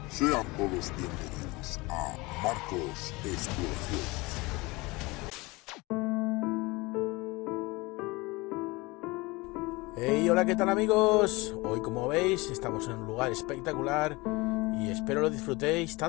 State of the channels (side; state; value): right; quieter; 23.6 dB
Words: Sean todos bienvenidos a Marcos Exploraciones. Hey, hola, ¿qué tal amigos? Hoy, como veis, estamos en un lugar espectacular y espero lo disfrutéis